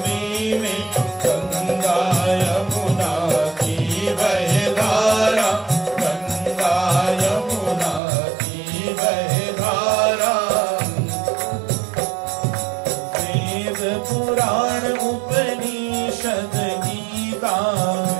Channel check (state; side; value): drops out; left; at 8.0 s